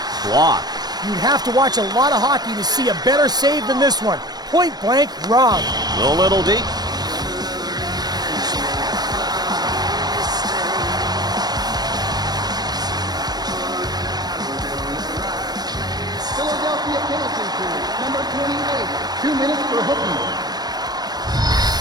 Blocked. You'd have to watch a lot of hockey to see a better save than this one. Point blank wrong. A little deep. Philadelphia penalty kill, number 28, 2 minutes for hooking.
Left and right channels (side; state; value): left; late; 0.19 ms